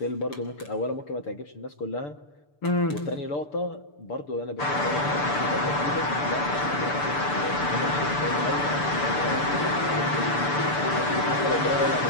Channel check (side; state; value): right; late; 6.8 ms